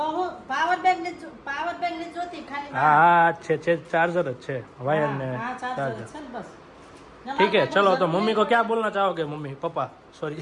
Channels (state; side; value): identical; both; correlation 1.00